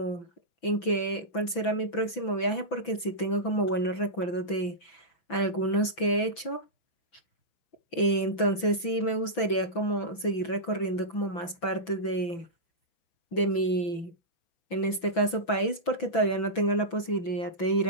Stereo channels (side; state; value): right; late; 6.0 ms